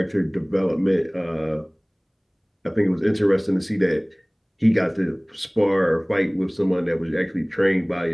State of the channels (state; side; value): identical; both; correlation 1.00